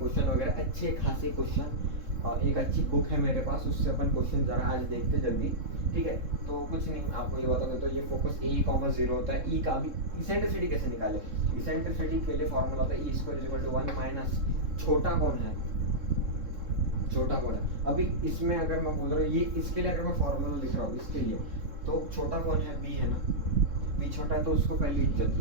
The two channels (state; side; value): late; left; 3.7 ms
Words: वगैरह, अच्छे खासे क्वेश्चन। एक अच्छी बुक है मेरे पास, उससे अपन क्वेश्चन जरा आज देखते जल्दी। ठीक है, तो कुछ नहीं, आपको ये बता दो। तो ये फोकस A,0 होता है। E का भी इसेंट्रिसिटी कैसे निकाले? इसेंट्रिसिटी के लिए फॉर्मूला होता है E² 1 माइनस छोटा कौन है, छोटा कौन है। अभी इसमें अगर मैं बोल रहा हूँ ये, इसके लिए अगर मैं फॉर्मूला लिख रहा हूँ इसके लिए, तो छोटा कौन है? B है ना। B छोटा है तो उसको पहले इज्जत